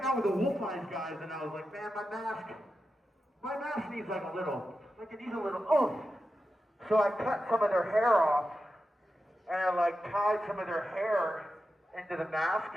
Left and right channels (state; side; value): normal; both; correlation 0.90